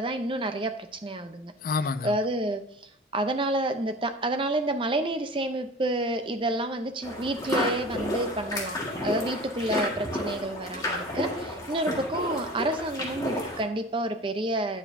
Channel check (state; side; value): normal; both; correlation 0.39